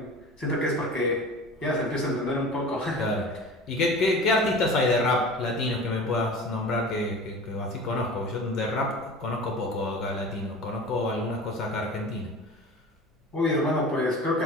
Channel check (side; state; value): both; normal; correlation 0.37